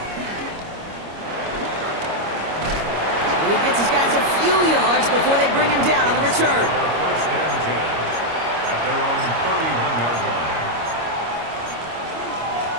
And he gets his guys a few yards before they bring him down on the return. 1st and 10. At their own 31-yard line.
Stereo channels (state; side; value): late; left; 25 ms